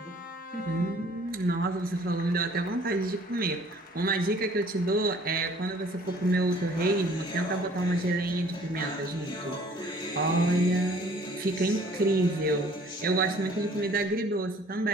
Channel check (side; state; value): both; normal; correlation 0.55